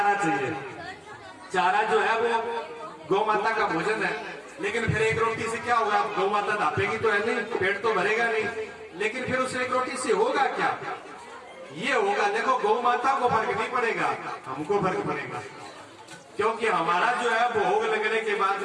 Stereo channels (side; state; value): both; identical; correlation 1.00